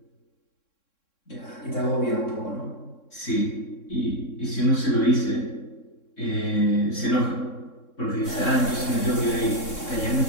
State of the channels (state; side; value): late; right; 3.6 ms